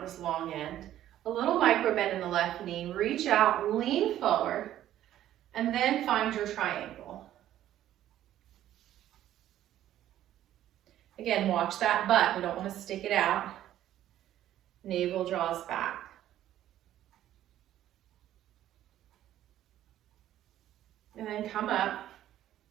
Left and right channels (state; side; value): quieter; left; 12.4 dB